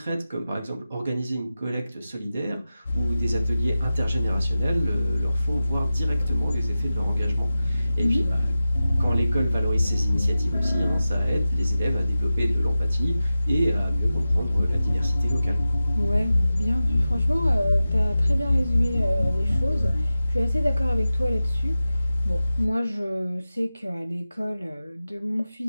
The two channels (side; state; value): both; inverted; correlation -0.94